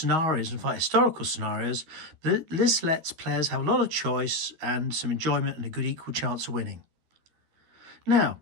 and fight historical scenarios, but this lets players have a lot of choice and some enjoyment and a good equal chance of winning. Now,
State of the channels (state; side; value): late; left; 13 ms